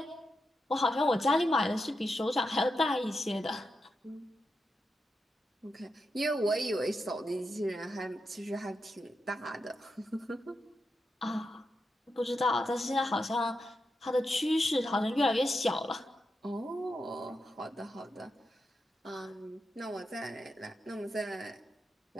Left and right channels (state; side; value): normal; both; correlation 0.87